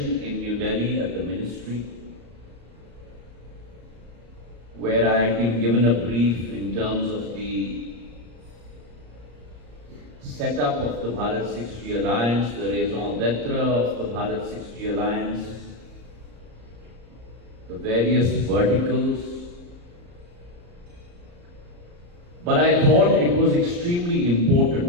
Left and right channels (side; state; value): left; late; 34 ms